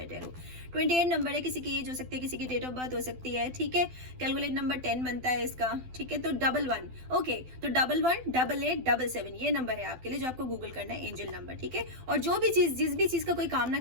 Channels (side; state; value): left; late; 12 ms